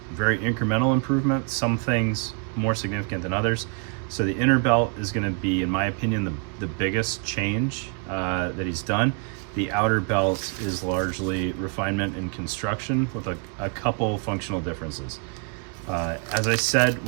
Very incremental improvement. Some things more significant than others. So the inner belt is going to be, in my opinion, the biggest change that he's done. The outer belt is largely refinement and construction with a couple functional differences. As I said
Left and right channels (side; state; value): left; quieter; 38.2 dB